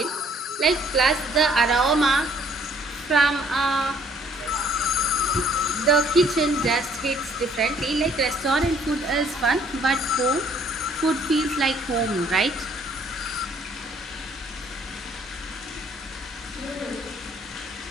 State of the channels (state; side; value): normal; both; correlation 0.61